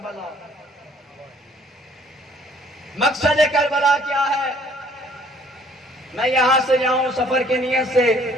مقصد کربلا کیا ہے؟ میں یہاں سے جاؤں سفر کی نیت سے،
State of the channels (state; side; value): normal; both; correlation 0.59